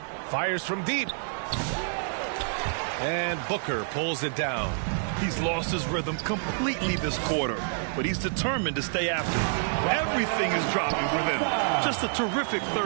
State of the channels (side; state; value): left; silent; 59 dB below the other